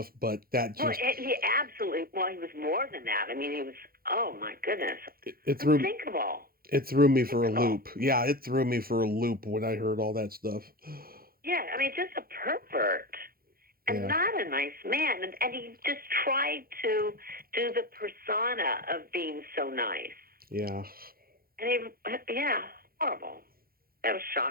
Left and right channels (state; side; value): late; left; 0.43 ms